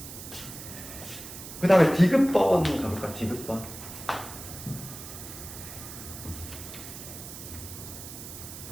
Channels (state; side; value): noise; right; hiss, 11 dB below the sound